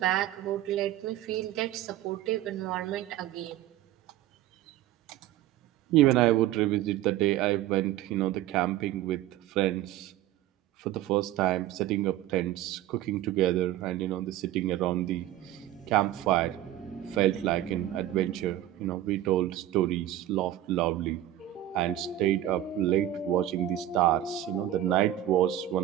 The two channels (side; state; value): left; quieter; 13.3 dB